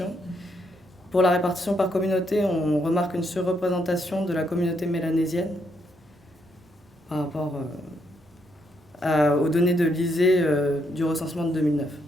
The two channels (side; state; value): both; normal; correlation 0.76